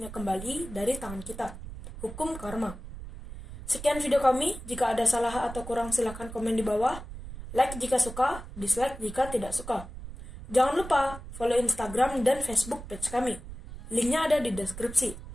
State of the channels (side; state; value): right; noise; rumble, 12 dB below the sound